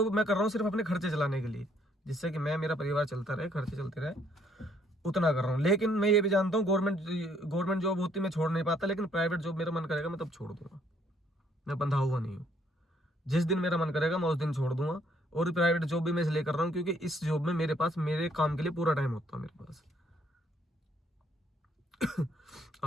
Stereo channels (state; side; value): normal; both; correlation 0.67